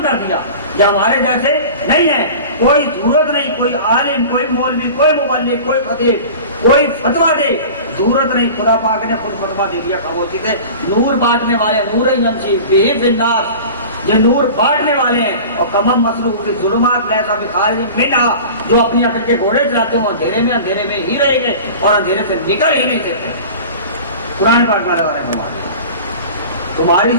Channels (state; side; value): inverted; both; correlation -0.37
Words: کر دیا، یہ ہمارے جیسے نہیں ہے، کوئی ضرورت نہیں، کوئی عالم، کوئی مولوی، کوئی مبلغ، کوئی خطیب، کوئی فتویٰ دے، ضرورت نہیں، خدا پاک نے خود فتویٰ دے دیا خاموشی سے۔ نور بانٹنے والے، نور یمشی بہ فی الناس، یہ نور بانٹنے والے ہیں. اور کمم مسلوب کی ظلمات لیسا بخارج منہا, جو اپنی عقل کے گھوڑے چلاتے ہیں وہ اندھیرے میں ہی رہیں گے اور اندھیرے سے نکل ہی نہیں سکتے. قرآن پاک میں اللہ نے فرمایا تمہاری